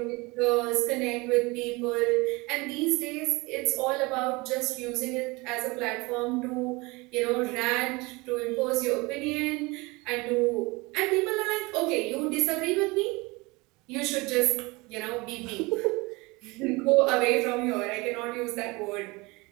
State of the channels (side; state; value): left; quieter; 24.5 dB